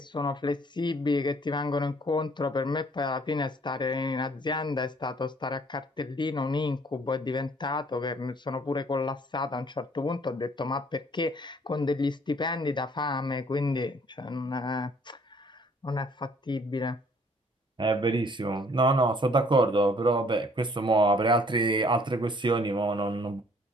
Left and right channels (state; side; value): normal; both; correlation 0.59